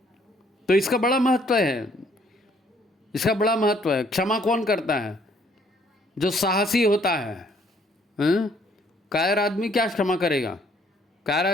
तो इसका बड़ा महत्व है, इसका बड़ा महत्व है। क्षमा कौन करता है? जो साहसी होता है। कायर आदमी क्या क्षमा करेगा? कायर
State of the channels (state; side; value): normal; both; correlation 0.64